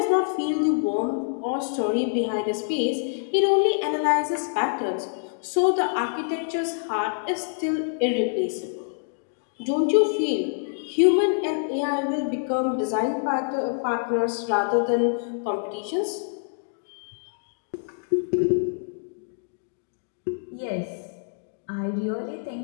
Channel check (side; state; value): right; silent; digital silence